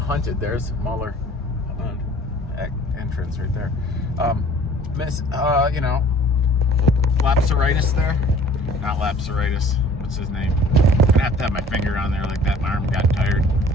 Hunted. There's Mahler entrance right there. Lapsaritis there. Not lapsaritis. What's his name? I'm gonna have to have my finger on there like that. My arm got tired.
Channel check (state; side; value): normal; both; correlation 0.51